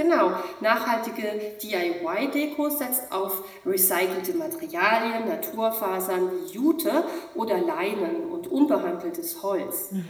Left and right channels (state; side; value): identical; both; correlation 1.00